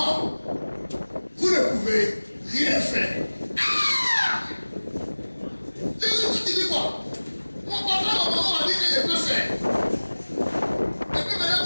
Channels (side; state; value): both; inverted; correlation -1.00